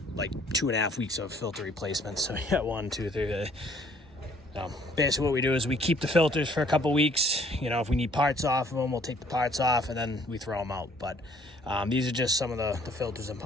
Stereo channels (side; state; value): both; normal; correlation 0.60